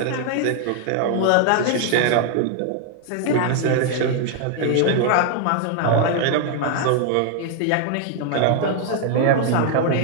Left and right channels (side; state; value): both; different; correlation 0.00